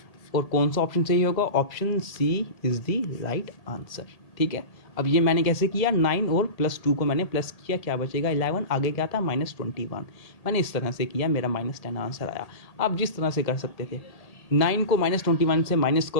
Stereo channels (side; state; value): right; late; 1.8 ms